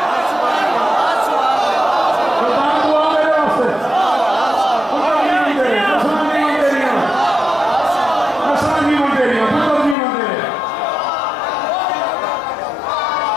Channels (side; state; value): right; drops out; at 10.0 s